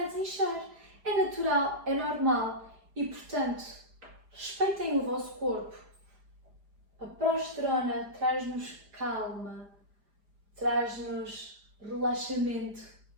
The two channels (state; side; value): late; left; 4.9 ms